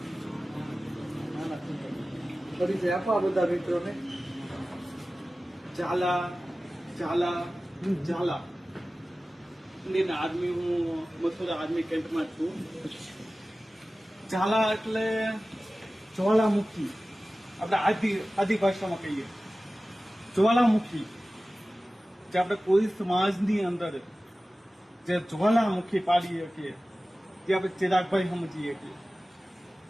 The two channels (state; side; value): normal; both; correlation 0.96